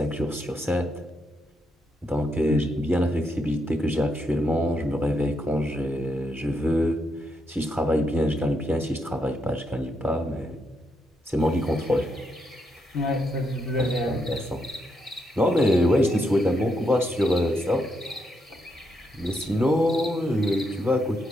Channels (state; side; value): normal; both; correlation 0.80